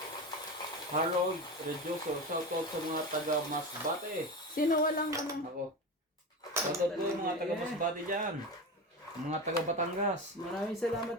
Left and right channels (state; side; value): normal; both; correlation 0.24